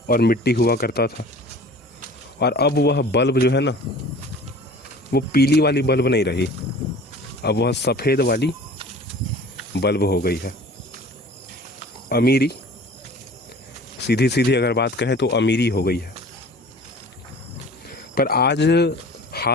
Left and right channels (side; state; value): both; normal; correlation 0.44